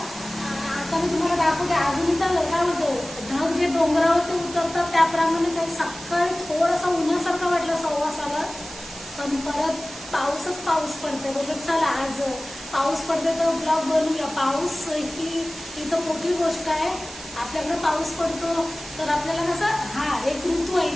मी तुम्हाला दाखवते, अजून तर काय होतं, ढग जे डोंगरावरती उतरतात त्याप्रमाणेच आहे। सकाळी थोडासा उन्हासारखा वाटला 6:15, पण परत पाऊसच पाऊस पडते। बघा, चला आज पाऊस पडते तर ब्लॉग बनवूया। पाऊस ही इथं मोठी गोष्ट आहे। आपल्याकडे पाऊस पडतो तर आपल्याला कसं एक ऋतू आहे,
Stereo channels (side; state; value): right; noise; hiss, 14 dB below the sound